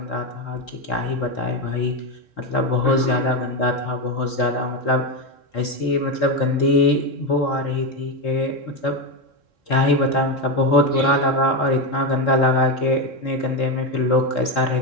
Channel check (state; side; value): late; right; 3.7 ms